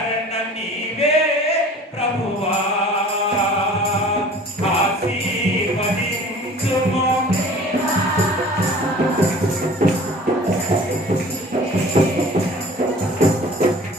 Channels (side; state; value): both; normal; correlation 0.46